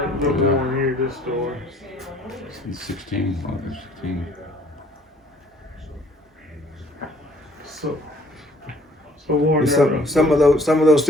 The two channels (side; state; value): both; normal; correlation 0.59